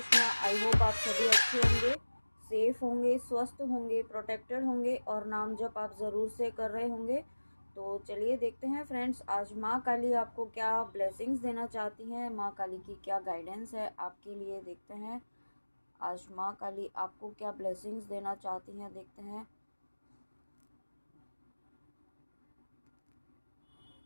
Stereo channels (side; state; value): both; inverted; correlation -1.00